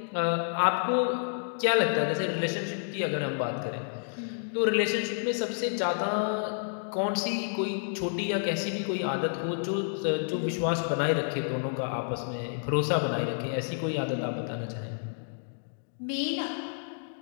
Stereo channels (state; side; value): silent; right; digital silence